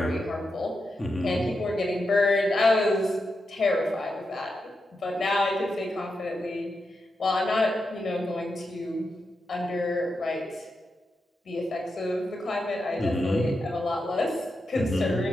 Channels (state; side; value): normal; both; correlation 0.87